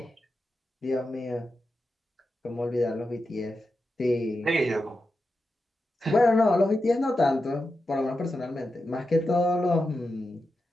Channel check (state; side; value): normal; both; correlation 0.90